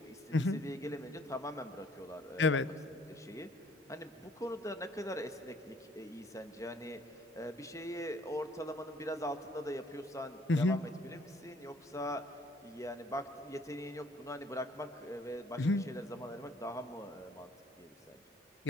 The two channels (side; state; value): both; normal; correlation 0.59